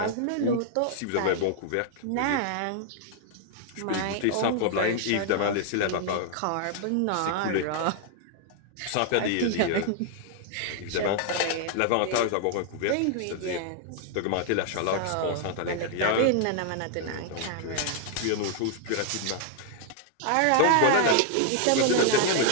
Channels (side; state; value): both; different; correlation 0.00